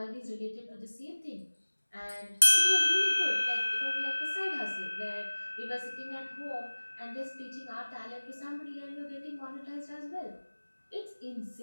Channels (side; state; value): both; inverted; correlation -1.00